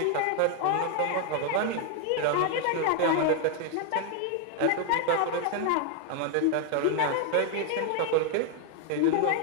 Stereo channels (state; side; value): different; both; correlation 0.00